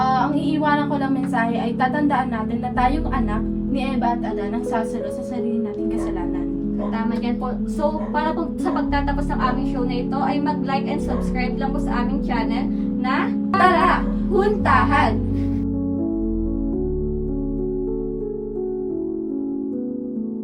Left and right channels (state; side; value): identical; both; correlation 1.00